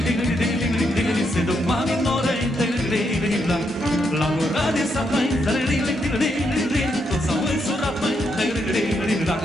se duc mami nore, la ora de sat mai, tot s-au însurat mai,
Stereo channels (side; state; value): both; normal; correlation 0.79